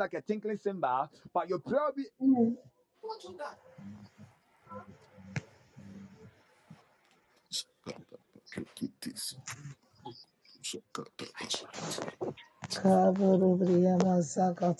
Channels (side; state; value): both; identical; correlation 1.00